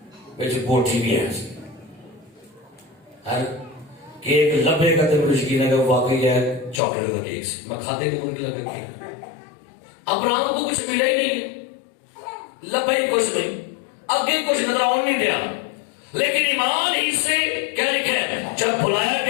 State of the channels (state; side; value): drops out; right; at 6.8 s